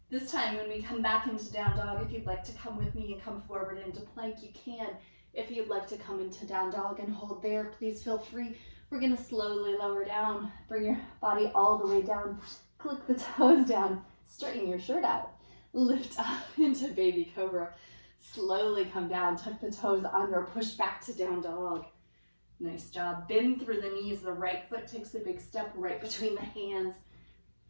This time when we come back into down dog, if you'd like to come with me and come forward into plank, you can. If you'd like to come into down dog and hold there, please feel free. We're gonna slowly lower down, bring your body all the way down, click the toes down, straighten your shirt out, lift up into baby cobra. Slowly come down, tuck the toes under, push back to down dog. Nice job. Bend through the knees. The right foot takes a big step right between the hands.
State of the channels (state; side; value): inverted; both; correlation -1.00